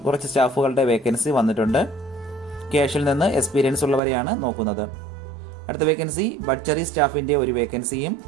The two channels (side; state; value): left; drops out; at 4.0 s